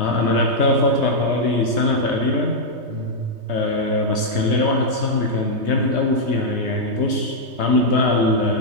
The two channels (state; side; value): late; left; 3.2 ms